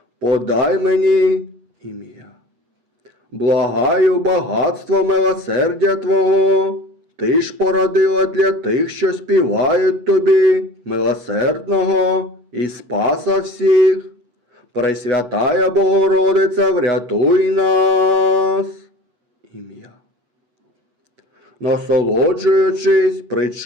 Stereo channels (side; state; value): left; late; 8.1 ms